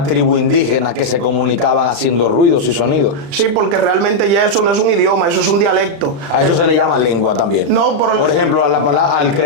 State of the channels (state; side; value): late; left; 35 ms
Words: tribu indígena que se comunicaban haciendo ruidos y sonidos. Sí, porque realmente ya eso no es un idioma, eso es un dialecto. A eso se le llama lengua también. No, por ejemplo, al